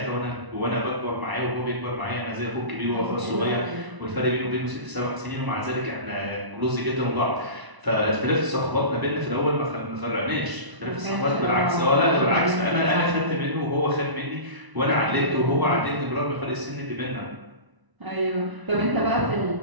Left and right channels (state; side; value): late; left; 1.0 ms